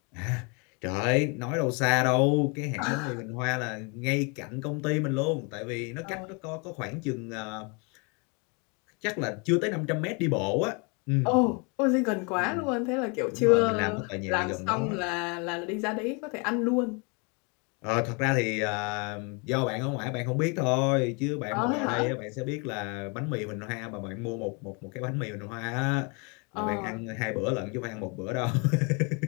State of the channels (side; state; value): right; quieter; 32.8 dB